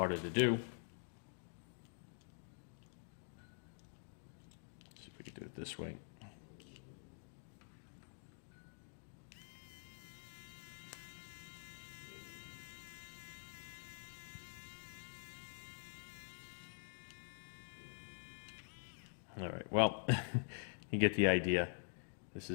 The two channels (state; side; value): silent; right; digital silence